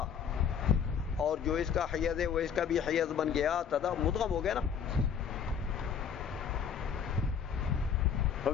اور جو اس کا حیز ہے وہ اس کا بھی حیز بن گیا، مدغم ہو گیا نا.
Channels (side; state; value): right; quieter; 7.4 dB